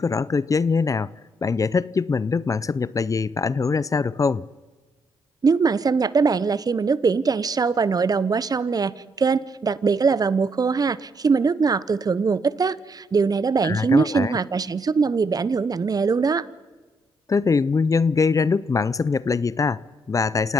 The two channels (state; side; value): normal; both; correlation 0.74